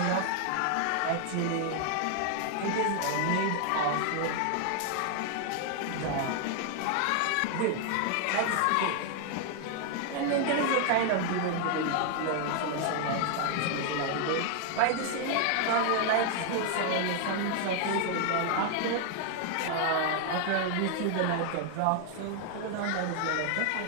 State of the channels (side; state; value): both; different; correlation 0.00